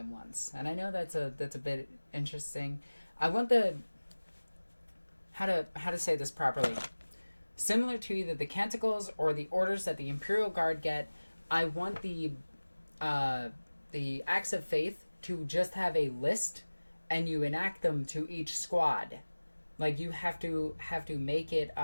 once. And I know that's a bit interesting. I want the... How to say this properly. Similar to either the canticles or the orders that the Imperial Guard get, I want the Acts of Faith to just have a list, and you enact them to each squad. Like, you have to make it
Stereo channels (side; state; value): both; inverted; correlation -1.00